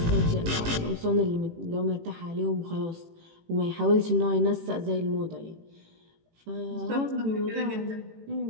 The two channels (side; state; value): left; late; 18 ms